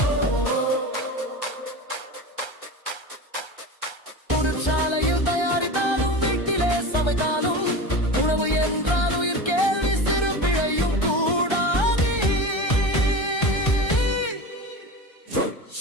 சாலையில் தயாரித்தாலும் வீட்டிலே சமைத்தாலும் உணவு என்றால் உயிர் கேள்வி சிறு பிழையும் கூடாது.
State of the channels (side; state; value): right; late; 1.3 ms